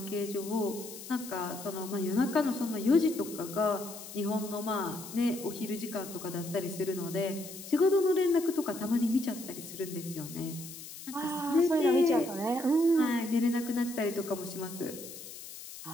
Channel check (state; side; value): noise; left; hiss, 13 dB below the sound